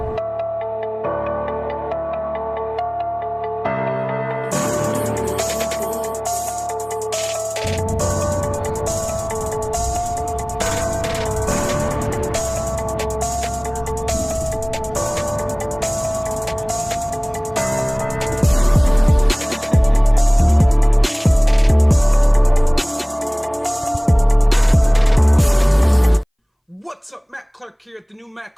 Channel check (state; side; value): identical; both; correlation 1.00